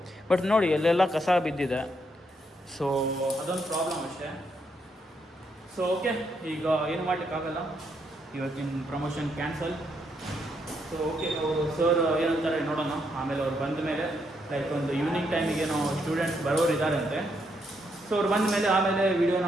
ಬಟ್ ನೋಡಿ, ಎಲ್ಲೆಲ್ಲ ಕಸ ಬಿದ್ದಿದೆ. ಸೊ ಅದೊಂದು ಪ್ರಾಬ್ಲಮ್ ಅಷ್ಟೇ. ಸೊ ಓಕೆ, ಈಗ ಏನು ಮಾಡಲಿಕ್ಕಾಗಲ್ಲ, ಇವತ್ತಿನ ಪ್ರಮೋಷನ್ ಕ್ಯಾನ್ಸಲ್. ಸೊ ಓಕೆ, ಅವರು ಸರ್ ಏನಂತಾರೆ ನೋಡೋಣ. ಆಮೇಲೆ ಅವ್ರು ಬಂದ ಮೇಲೆ, ಲೈಕ್ ಒಂದು ಈವ್ನಿಂಗ್ ಟೈಮಿಗೆ ಏನೋ ಸ್ಟೂಡೆಂಟ್ಸ್ ಬರೋರು ಇದ್ದಾರಂತೆ. ಸೊ ಅವ್ರು ಬಂದ ಮೇಲೆ ಆಮೇಲೆ ವೀಡಿಯೋನ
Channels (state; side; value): normal; both; correlation 0.77